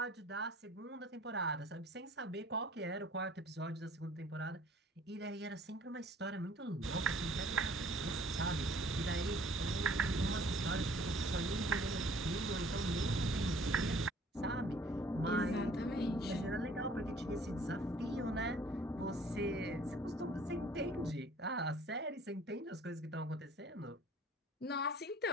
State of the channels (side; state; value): both; normal; correlation 0.54